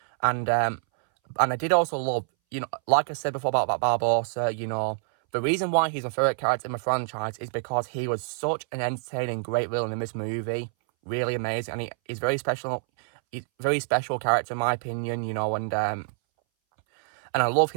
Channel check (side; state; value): left; silent; 60 dB below the other